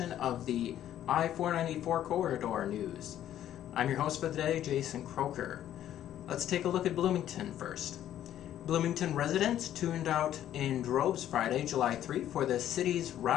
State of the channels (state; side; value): quieter; right; 11.5 dB